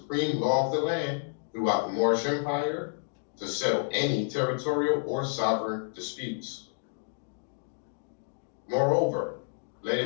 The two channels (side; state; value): right; silent; digital silence